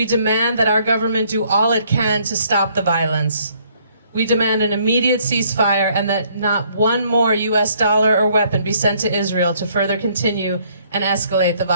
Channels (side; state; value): both; inverted; correlation -0.65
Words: demand that our government do all it can to stop the violence. We demand an immediate ceasefire and that not one more US dollar or weapon be sent to Israel to further continue and escalate the